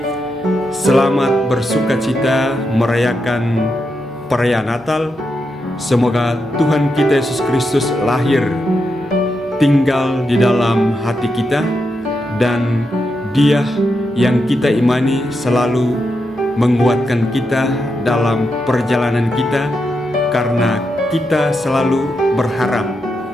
selamat bersukacita merayakan perayaan Natal. Semoga Tuhan kita Yesus Kristus lahir, tinggal di dalam hati kita, dan Dia yang kita imani selalu menguatkan kita dalam perjalanan kita, karena kita selalu berharap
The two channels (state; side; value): normal; both; correlation 0.85